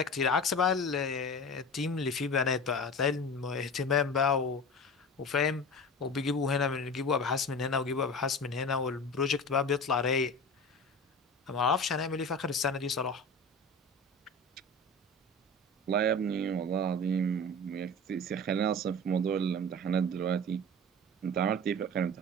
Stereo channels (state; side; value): normal; both; correlation 0.33